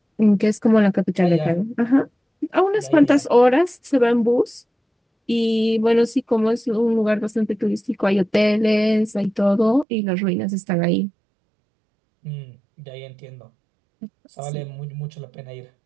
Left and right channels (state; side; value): drops out; left; at 9.9 s